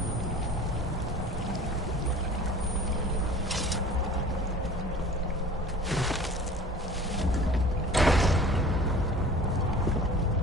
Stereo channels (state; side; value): normal; both; correlation 0.43